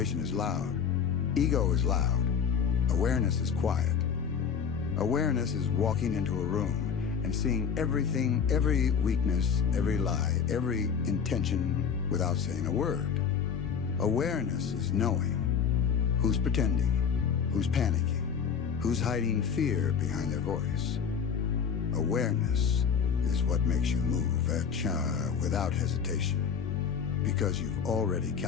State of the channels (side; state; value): right; quieter; 6.9 dB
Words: is loud. Ego is loud. Awareness is quiet. Awareness is walking into a room and seeing everything, every weakness, every lie, every intention without saying a word. Awareness is knowing who's pretending, who's panicking, who's hiding fear behind their voice. Awareness is what makes you move without hesitation, because you've already